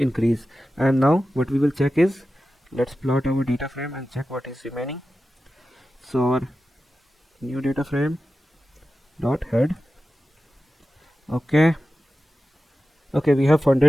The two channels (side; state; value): both; normal; correlation 0.93